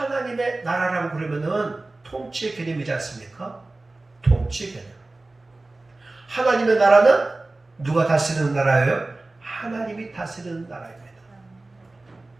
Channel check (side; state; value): left; quieter; 3.1 dB